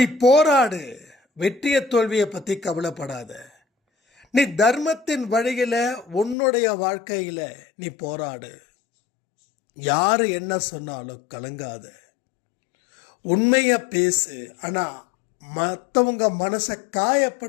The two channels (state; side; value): drops out; right; at 6.4 s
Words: போராடு, வெற்றிய தோல்வியை பத்தி கவலைப்படாத. நீ தர்மத்தின் வழியில உன்னுடைய வாழ்க்கையில நீ போராடு. யாரு என்ன சொன்னாலும் கலங்காத, உண்மைய பேசு. ஆனா மற்றவங்க மனசை